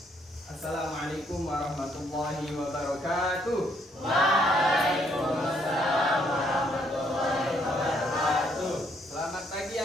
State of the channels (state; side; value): normal; both; correlation 0.70